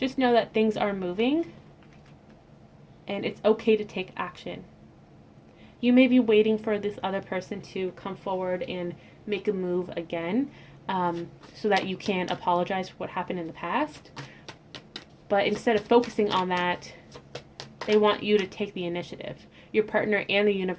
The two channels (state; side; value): identical; both; correlation 1.00